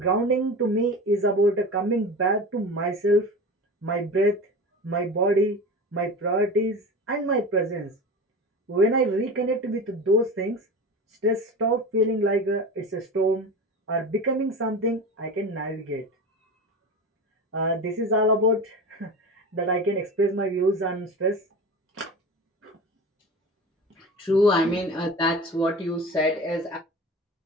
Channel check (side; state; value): both; normal; correlation 0.31